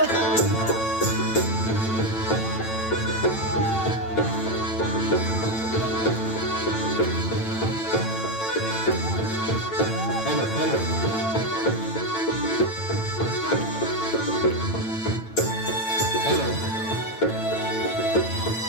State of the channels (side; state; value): right; late; 9.0 ms